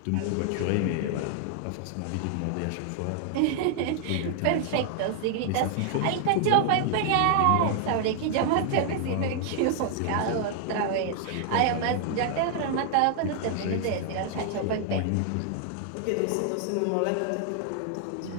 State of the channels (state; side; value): different; both; correlation 0.00